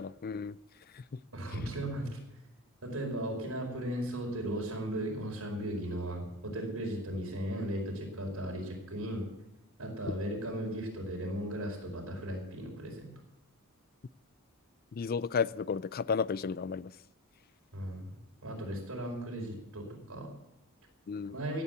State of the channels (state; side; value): normal; both; correlation 0.26